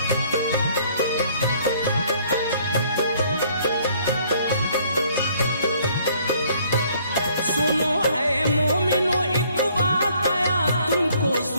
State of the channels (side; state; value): both; inverted; correlation -0.61